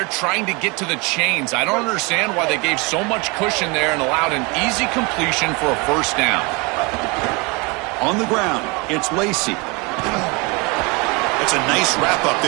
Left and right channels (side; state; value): left; quieter; 28.3 dB